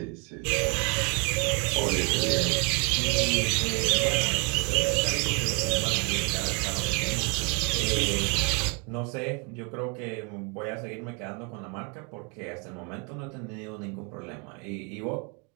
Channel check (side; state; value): left; quieter; 34.0 dB